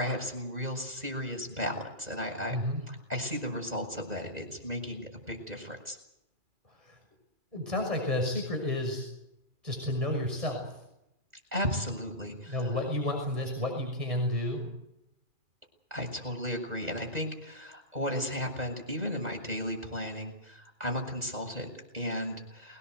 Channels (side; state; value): left; late; 2.0 ms